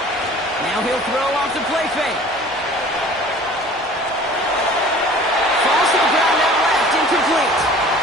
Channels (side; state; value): both; normal; correlation 0.46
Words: Now he'll throw off the play fake. Falls to the ground out left, incomplete.